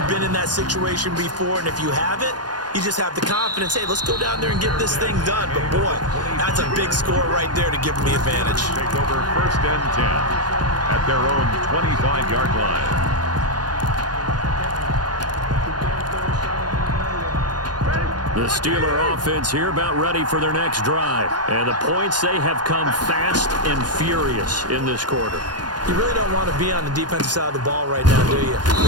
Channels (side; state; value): left; late; 0.70 ms